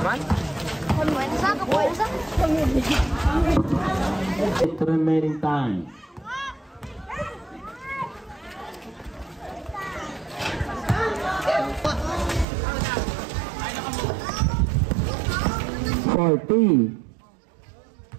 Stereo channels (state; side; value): drops out; left; at 12.5 s